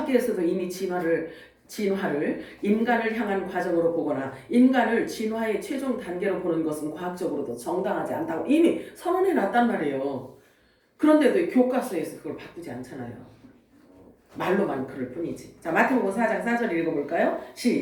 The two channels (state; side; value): identical; both; correlation 1.00